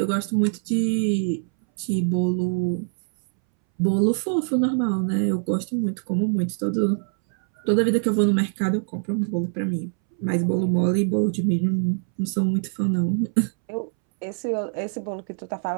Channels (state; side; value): silent; left; 63 dB below the other